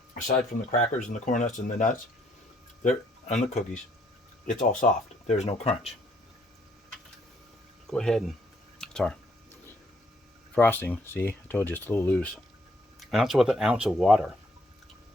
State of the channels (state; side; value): normal; both; correlation 0.68